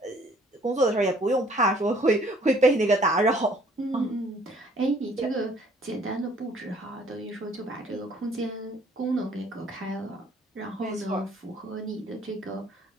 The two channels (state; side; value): normal; both; correlation 0.59